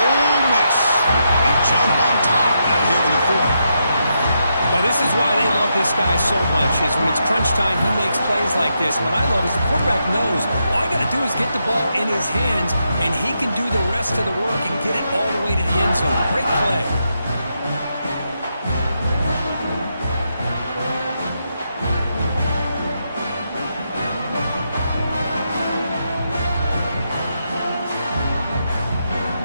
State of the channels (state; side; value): inverted; both; correlation -0.83